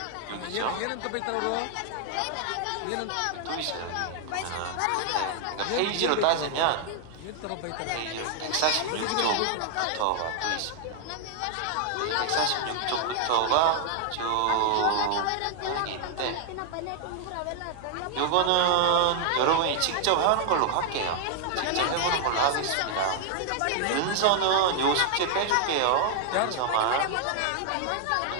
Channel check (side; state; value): both; different; correlation 0.00